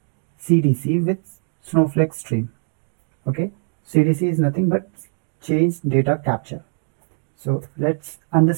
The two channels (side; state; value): left; silent; 56 dB below the other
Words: CDC with Snowflake stream? Okay, CDC is nothing but change data capture. So let's